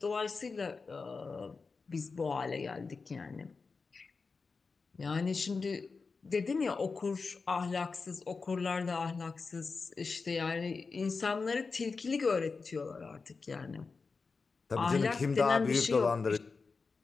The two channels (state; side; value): quieter; right; 4.5 dB